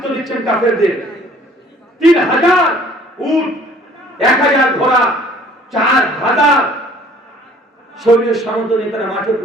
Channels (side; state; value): both; normal; correlation 0.54